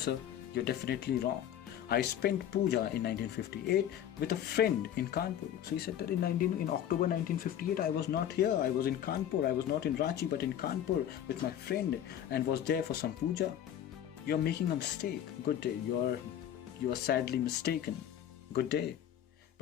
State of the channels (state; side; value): quieter; right; 10.4 dB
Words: you're definitely wrong. I spent puja in 1958 with a friend in Kanpur. So he said that in October 1958 I was not here. I was in Kanpur. I was not in Ranchi but in Kanpur with my friend and was there for some puja. You are making a mistake. Good day. You are sadly mistaken. Good day.